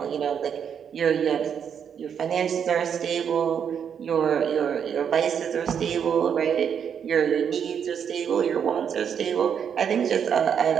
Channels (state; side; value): quieter; left; 7.8 dB